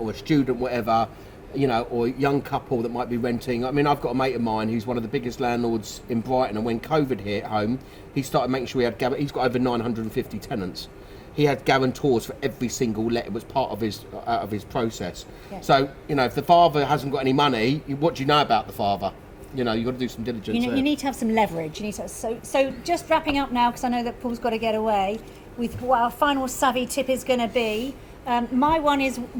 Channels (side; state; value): both; identical; correlation 1.00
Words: a student, whatever, you know, or a young couple that might be renting. I mean, I've got a mate of mine who's one of the biggest landlords in Brighton, and when COVID hit home, he started making sure he's got over 950 tenants. He had guarantors for every single let. It was part of his process. Yeah. So, you know, if the father hasn't got any money, what do you know about the father? You know, you've got to do some diligence. You need to have some leverage. You need to. So just wrapping up now, because I know that Paul's got to get away, with what our final savvy tip is going to be. My one is